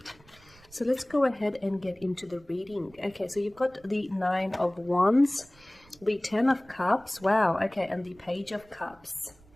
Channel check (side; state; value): right; noise; rumble, 27 dB below the sound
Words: So let's go ahead and get into the reading. Okay, so you've got the Nine of Wands, the Ten of Cups, wow, okay, and the Page of Cups.